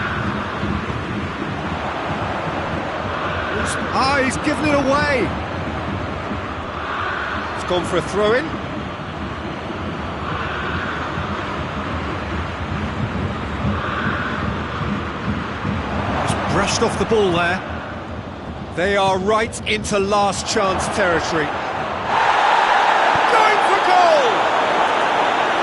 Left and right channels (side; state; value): both; identical; correlation 1.00